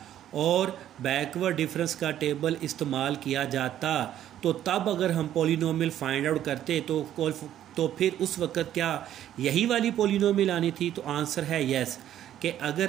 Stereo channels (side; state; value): left; quieter; 11.5 dB